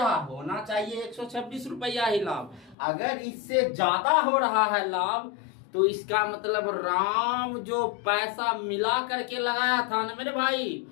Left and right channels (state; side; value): drops out; right; at 2.8 s